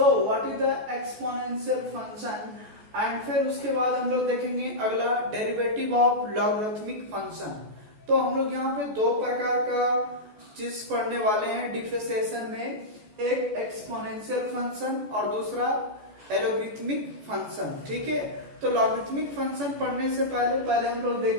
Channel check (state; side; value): late; left; 14 ms